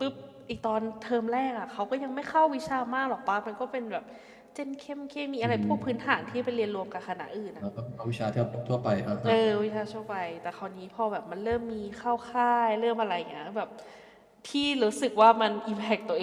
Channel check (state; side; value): identical; both; correlation 1.00